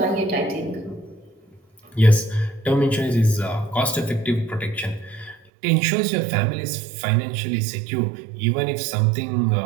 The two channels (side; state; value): left; drops out; at 5.4 s